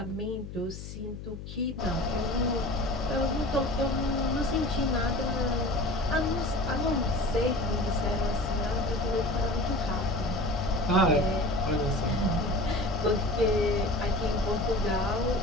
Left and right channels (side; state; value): left; noise; hum, 11 dB below the sound